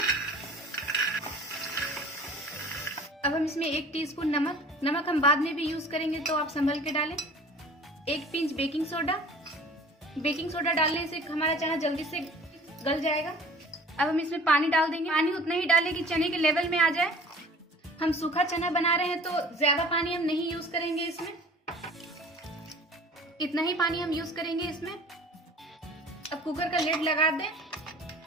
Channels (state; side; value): normal; both; correlation 0.46